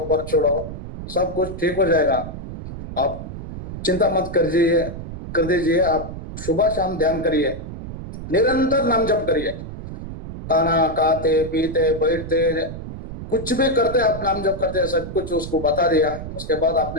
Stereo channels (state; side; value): noise; right; rumble, 9 dB below the sound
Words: छोड़ो, सब कुछ ठीक हो जाएगा। आप चिंता मत कर दीजिए, आप सुबह शाम ध्यान करिए, निरंतर नाम जप करिए, खाना खाते पीते बैठते कुछ भी करते आप नाम जप करते, सब कुछ उसको बता दिया। उसके बाद